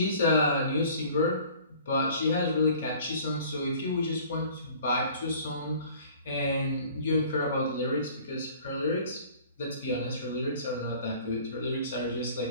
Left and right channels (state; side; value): inverted; both; correlation -0.50